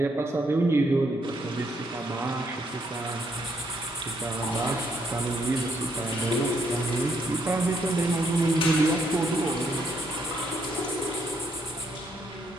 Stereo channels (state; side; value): normal; both; correlation 0.73